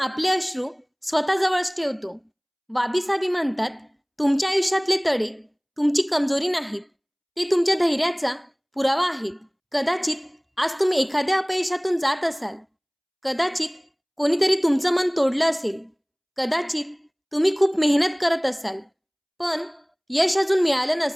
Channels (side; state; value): both; identical; correlation 1.00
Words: अश्रू स्वतःजवळच ठेवतो. वाबीसाबी म्हणतात, तुमच्या आयुष्यातले तडे तुमची कमजोरी नाहीत, ते तुमच्या धैर्याचा पुरावा आहेत. कदाचित आज तुम्ही एखाद्या अपयशातून जात असाल, कदाचित कोणीतरी तुमचं मन तोडलं असेल, कदाचित तुम्ही खूप मेहनत करत असाल पण यश अजून मिळालं